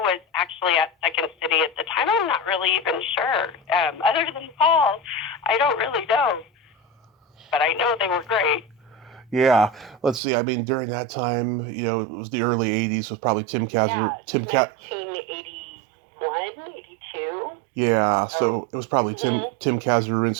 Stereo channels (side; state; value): left; drops out; at 10.2 s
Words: was actually at Second City at the time, I'm not really even sure. Other than Paul, I don't really know. But but I know they were great. Yeah, let's see. I mean, during that time, it was the early '80s. It was probably Tim Yeah, Kazar, 1981, 82. Yeah, Oh, so it was probably mm-hmm. Tim